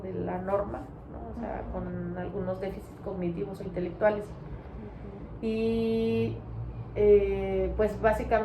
la norma, ¿no? O sea, con algunos déficits cognitivos o intelectuales. Y pues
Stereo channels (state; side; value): identical; both; correlation 1.00